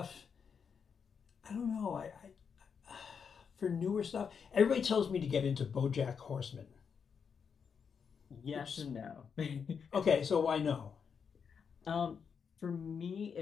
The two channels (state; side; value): quieter; right; 6.5 dB